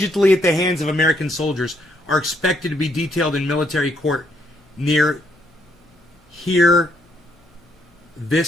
at the hands of American soldiers, are expected to be detailed in military court near here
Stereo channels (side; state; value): both; normal; correlation 0.72